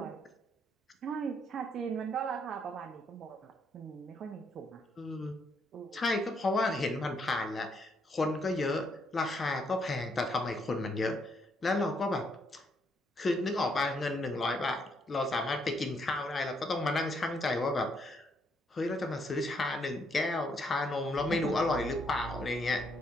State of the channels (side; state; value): both; normal; correlation 0.73